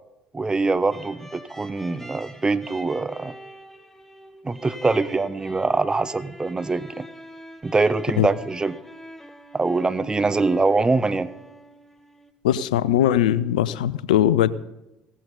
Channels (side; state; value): both; normal; correlation 0.49